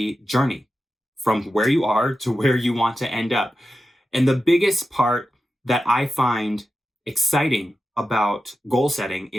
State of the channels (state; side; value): normal; both; correlation 0.91